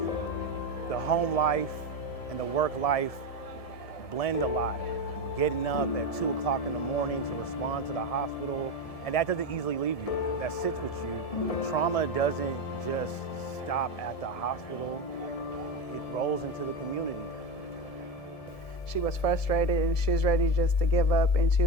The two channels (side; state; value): right; late; 1.7 ms